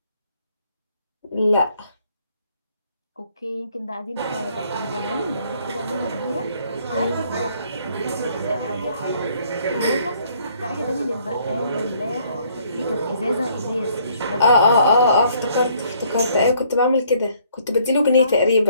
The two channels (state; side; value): inverted; both; correlation -0.64